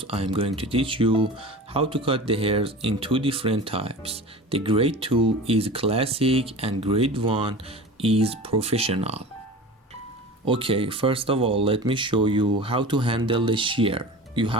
I am going to teach you how to cut the hairs in two different types. The grade 2 is classic and grade 1 is professional. Okay, first of all, let me show you how to handle the shear. You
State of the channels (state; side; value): normal; both; correlation 0.35